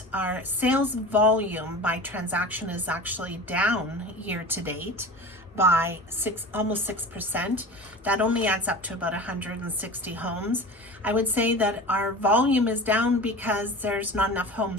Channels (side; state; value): both; normal; correlation 0.35